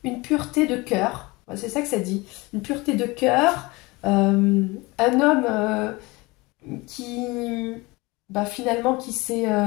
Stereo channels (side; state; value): right; quieter; 23.6 dB